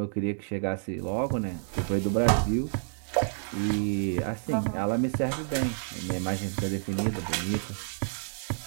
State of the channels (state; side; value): silent; left; 58 dB below the other